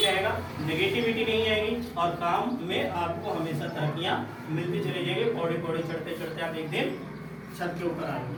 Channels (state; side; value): identical; both; correlation 1.00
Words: रहेगा, नेगेटिविटी नहीं आएगी और काम में आपको हमेशा तरक्कियां मिलती चली जाएगी। पौड़ी पौड़ी चढ़ते चढ़ते आप एक दिन छत के ऊपर